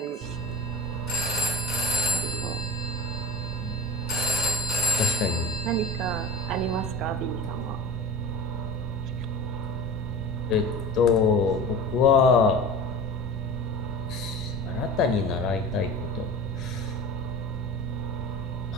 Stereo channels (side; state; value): both; normal; correlation 0.34